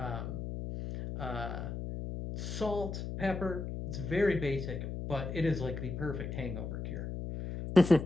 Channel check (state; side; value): noise; left; hum, 5 dB below the sound